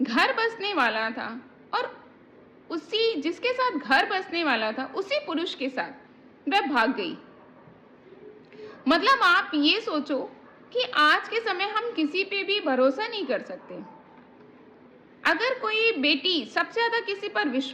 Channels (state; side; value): identical; both; correlation 1.00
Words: घर बसने वाला था और उसी जिसके साथ घर बसने वाला था उसी पुरुष के साथ वह भाग गई। मतलब आप ये सोचो कि आज के समय हम किसी पे भी भरोसा नहीं कर सकते। अगर कोई बेटी सबसे ज्यादा किसी पर